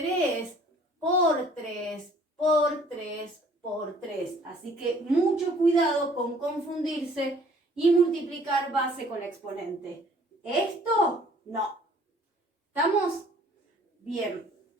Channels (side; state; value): both; normal; correlation 0.56